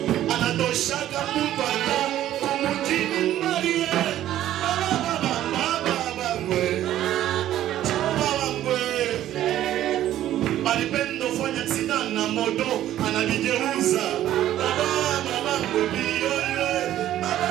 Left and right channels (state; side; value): quieter; left; 12.7 dB